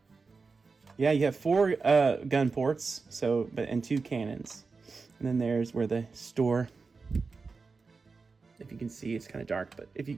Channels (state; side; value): quieter; left; 4.4 dB